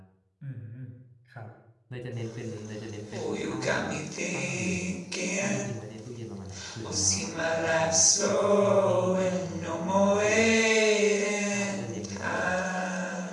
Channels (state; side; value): identical; both; correlation 1.00